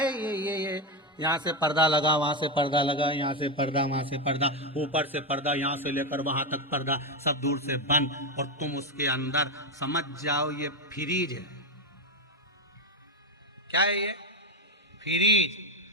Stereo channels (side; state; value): both; normal; correlation 0.10